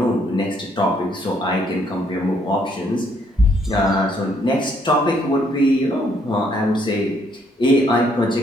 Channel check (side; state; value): both; normal; correlation 0.69